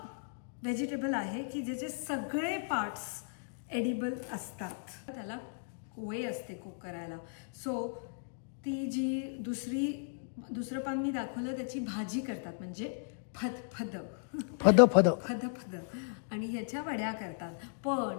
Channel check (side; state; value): right; silent; digital silence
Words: व्हेजिटेबल आहे की ज्याचे सगळे पार्ट्स एडिबल असतात. त्याला वे असते कुक करायला. सो ती जी दुसरं पान मी दाखवलं त्याची भाजी करतात, म्हणजे फद आणि ह्याच्या वड्या करतात. पण